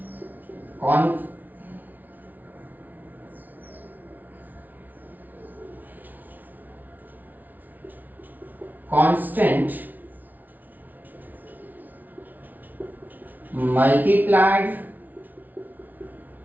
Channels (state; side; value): late; left; 0.081 ms